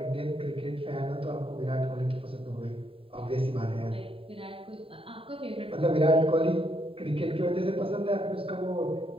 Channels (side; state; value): left; late; 0.27 ms